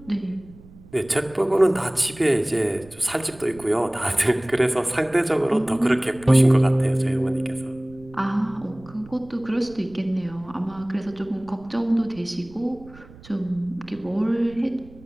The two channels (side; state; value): right; noise; rumble, 22 dB below the sound